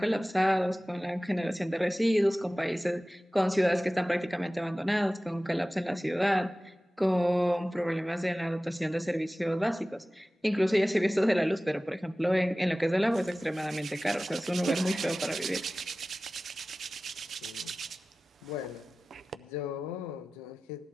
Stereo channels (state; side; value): normal; both; correlation 0.97